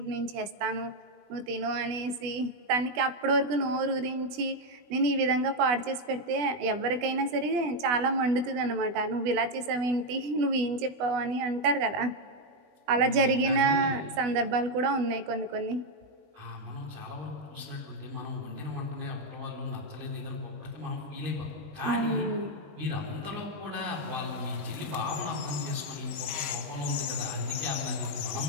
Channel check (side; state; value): left; late; 20 ms